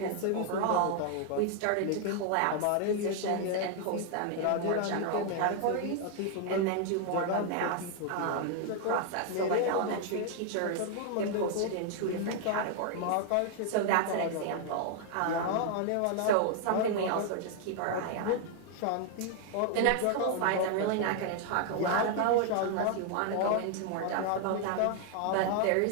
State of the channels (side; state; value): both; different; correlation 0.00